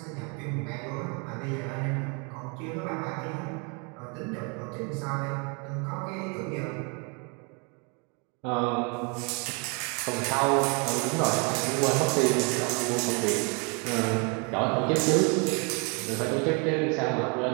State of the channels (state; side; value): quieter; left; 33.8 dB